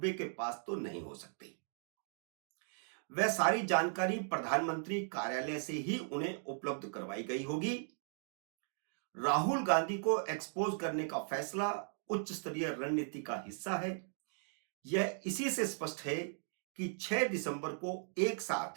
के पास तो नहीं हो सकती। वह सारी जानकारी प्रधानमंत्री कार्यालय से ही उन्हें उपलब्ध करवाई गई होगी। राहुल गांधी को एक्सपोज करने का फैसला उच्च स्तरीय रणनीति का हिस्सा है। यह इसी से स्पष्ट है कि 6 दिसंबर को एक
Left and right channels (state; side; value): silent; left; digital silence